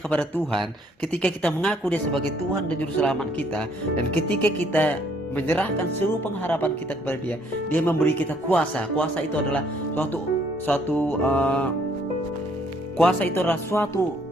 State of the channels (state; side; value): normal; both; correlation 0.65